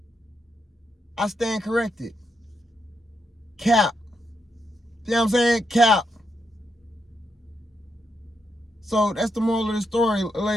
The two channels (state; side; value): normal; both; correlation 0.82